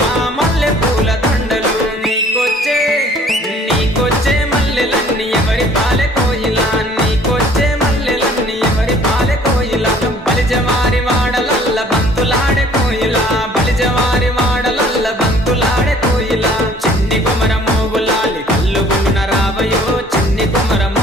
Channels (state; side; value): normal; both; correlation 0.55